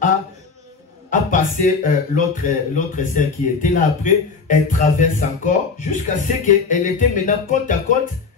a passé l'autre sœur qui était là après. Elle traverse encore jusqu'à ce qu'elle était maintenant côte à côte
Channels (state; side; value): quieter; right; 4.8 dB